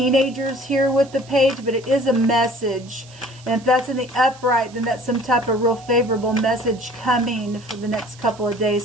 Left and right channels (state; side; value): noise; right; hiss, 23 dB below the sound